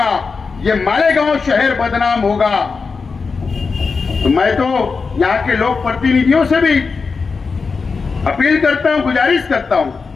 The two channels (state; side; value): quieter; right; 4.8 dB